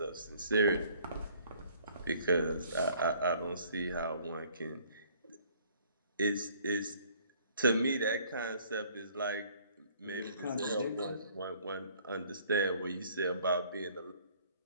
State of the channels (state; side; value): inverted; both; correlation -0.58